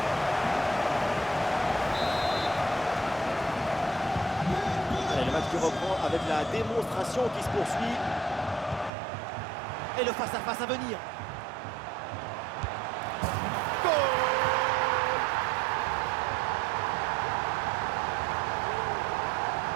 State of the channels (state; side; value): drops out; left; at 8.9 s